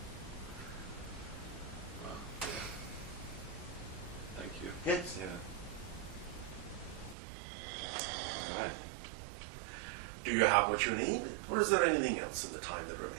Thank you. Yes. Yeah. All right. Do you have what you need? Or is there anything else in the time that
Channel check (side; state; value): left; drops out; at 7.2 s